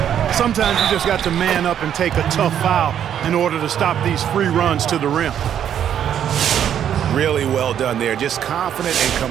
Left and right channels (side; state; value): left; quieter; 9.6 dB